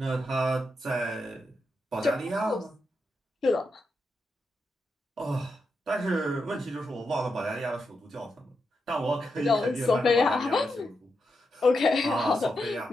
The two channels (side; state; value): both; normal; correlation 0.85